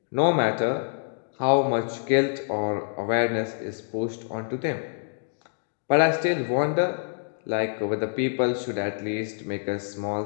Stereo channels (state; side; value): silent; right; digital silence